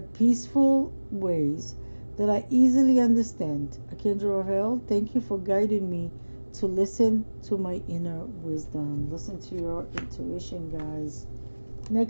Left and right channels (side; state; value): both; inverted; correlation -1.00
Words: ways that I easily understand. Archangel Raphael, thank you for guiding me to listen to my inner wisdom. Listen to your intuition, guys.